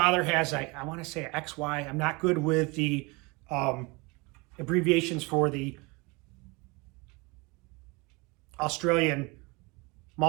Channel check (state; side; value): quieter; left; 26.7 dB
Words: has, I want to say XY. I'm not good with the abbreviations for the Australian